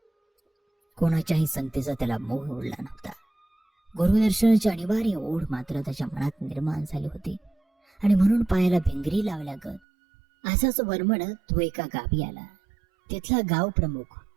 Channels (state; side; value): drops out; left; at 9.8 s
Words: कोणाच्याही संगतीचा त्याला मोह उरला नव्हता. गुरुदर्शनाची अनिवार्य ओढ मात्र त्याच्या मनात निर्माण झाली होती आणि म्हणून पायाला भिंगरी लावल्यागत असाच वरमडत तो एका गावी आला. तिथला गाव प्रमुख